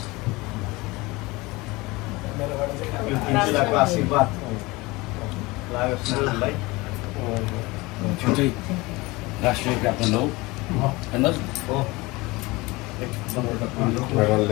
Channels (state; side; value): quieter; right; 22.6 dB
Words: जिल्लाको आशीर्वाद लागोस् नानीलाई। छुट्टै राष्ट्रिय क्याप्टन हो होइन,